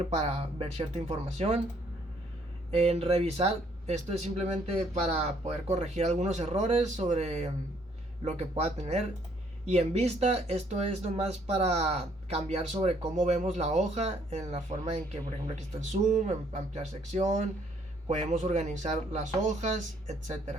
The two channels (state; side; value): normal; both; correlation 0.66